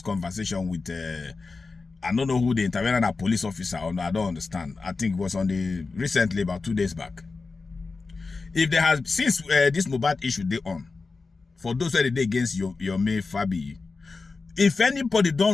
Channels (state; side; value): quieter; right; 4.1 dB